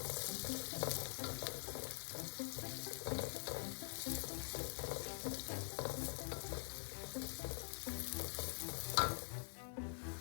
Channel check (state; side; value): silent; right; digital silence